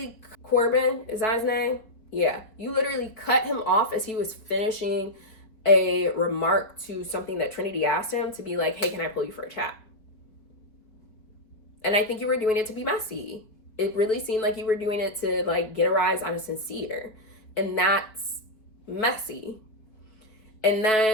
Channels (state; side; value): late; right; 4.4 ms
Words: Corbin, is that his name? Yeah. You literally cut him off as he was finishing a remark to something that Trinity asked him, to be like, hey, can I pull you for a chat? And I think you were doing it to be messy. It really seemed like you were doing it to like get a rise out of Sincere. And that's messy. And